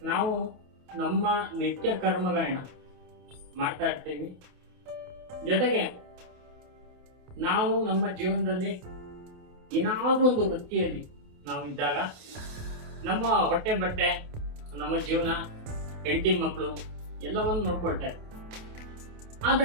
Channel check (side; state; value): left; late; 28 ms